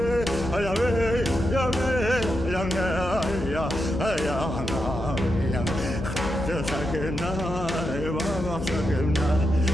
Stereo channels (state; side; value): noise; left; hum, 7 dB below the sound